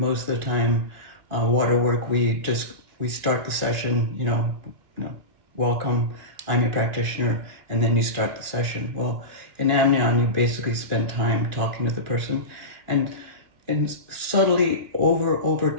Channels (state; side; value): late; left; 2.2 ms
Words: of the time, water work, we start the session, welcome, I'm your practitioner, and then you start the session. Well, in Amnion, you basically spend time talking to the person, and subtly over